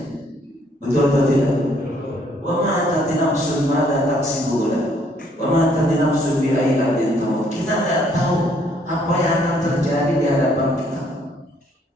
Betul atau tidak? Wa ma tadri nafsun ma la taksibu wa ma tadri nafsun bi ayyi ardin tamut. Kita tidak tahu apa yang akan terjadi di hadapan kita.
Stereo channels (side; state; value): both; normal; correlation 0.66